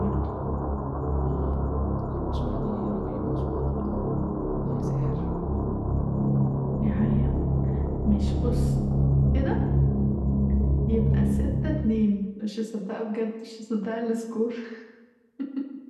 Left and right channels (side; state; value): both; identical; correlation 1.00